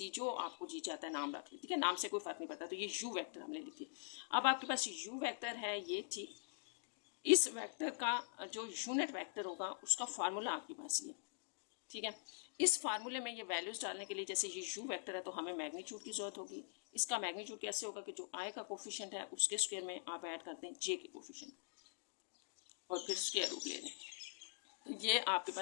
जो आपको जी चाहता है नाम रख लें, ठीक है, नाम से कोई फर्क नहीं पड़ता। तो ये u वेक्टर हमने लिख दिया। अब आपके पास u वेक्टर है ये, ठीक, इस वेक्टर का जो यूनिट वेक्टर होगा उसका फार्मूला आपके पास ये, ठीक है। इस फार्मूले में ये वैल्यूज डालने के लिए, जैसे ये u वेक्टर है तो हमें मैग्नीट्यूड की जरूरत होगी। इसका मैग्नीट्यूड कैसे होगा कि जो i का कोफिशिएंट है उसके स्क्वायर में आप ऐड करते हैं j के कोफिशिएंट और फिर स्क्वायर रूट ले लें। तो ये आपके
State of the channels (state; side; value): silent; right; digital silence